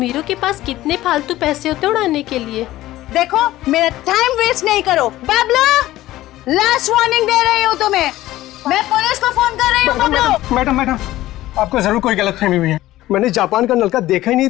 के पास कितने फालतू पैसे होते उड़ाने के लिए। देखो मेरा टाइम वेस्ट नहीं करो। बबलू, लास्ट वार्निंग दे रही हूँ तुम्हें, मैं पुलिस को फोन कर रही हूँ। बबलू। मैडम, आपको जरूर कोई गलतफहमी हुई है। मैंने जापान का नलका देखा ही नहीं,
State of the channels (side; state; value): right; quieter; 15.7 dB